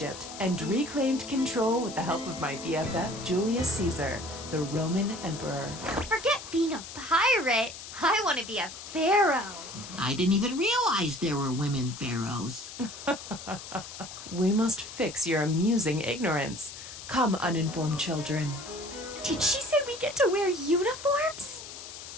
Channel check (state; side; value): noise; left; hiss, 12 dB below the sound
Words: and reclaimed control with the help of my BFF Julius Caesar, the Roman emperor. Forget being a pirate. I want to be a pharaoh. I didn't even realize there were women pharaohs. We must fix your amusing ignorance. Come, uninformed children. Did she say we get to wear uniforms?